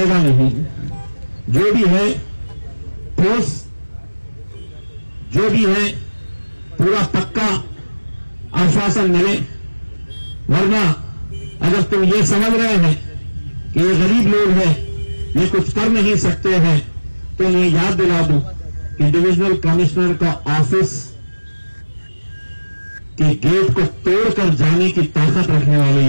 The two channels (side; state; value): both; inverted; correlation -1.00